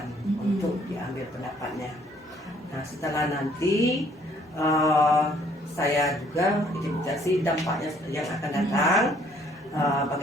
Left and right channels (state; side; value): normal; both; correlation 0.62